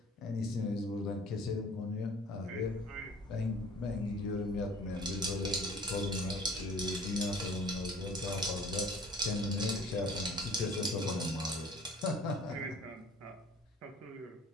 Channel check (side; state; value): both; normal; correlation 0.50